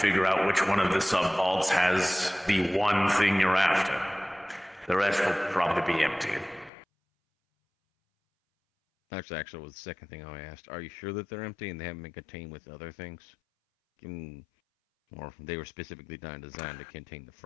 out which one of the sub-vaults has the one thing you're after. The rest will probably be empty. Actually, was the second thing I asked. Are you sure that they're empty and they haven't been contained with other things? Or they were specifically designed to contain the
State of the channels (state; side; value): drops out; right; at 6.7 s